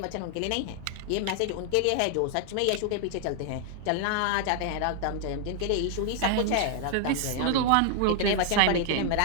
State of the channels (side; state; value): both; different; correlation 0.00